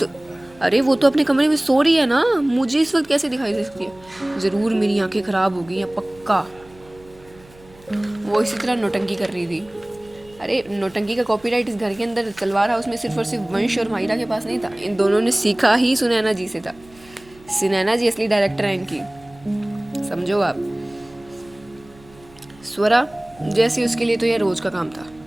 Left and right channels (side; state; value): right; noise; hum, 25 dB below the sound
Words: अरे वो तो अपने कमरे में सो रही है ना, मुझे इस वक्त कैसे दिखाई दे सकती है? ज़रूर मेरी आंखें ख़राब हो गई हैं, पक्का। वो इसी तरह नौटंकी कर रही थी। अरे नौटंकी का कॉपीराइट इस घर के अंदर तलवार हाउस में सिर्फ और सिर्फ वंश और माहिरा के पास नहीं था। इन दोनों ने सीखा ही सुनैना जी से था। सुनैना जी असली डायरेक्टर हैं इनकी, समझो आप। स्वरा जैसे उसके लिए तो यह रोज़ का काम था।